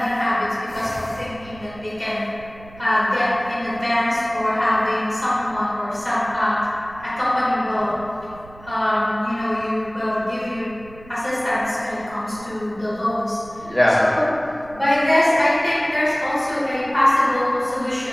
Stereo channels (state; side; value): noise; right; rumble, 20 dB below the sound